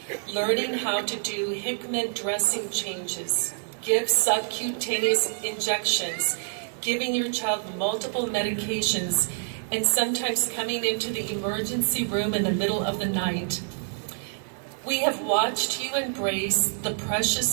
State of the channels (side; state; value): left; silent; 60 dB below the other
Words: learning how to do Hickman dressing changes, give subcutaneous injections, giving your child multiple medications, and sometimes coming into the emergency room in the middle of the night. We have watched you embrace the